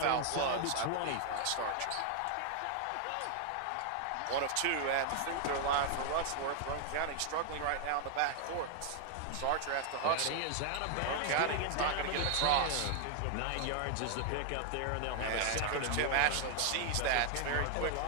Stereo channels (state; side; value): different; both; correlation 0.00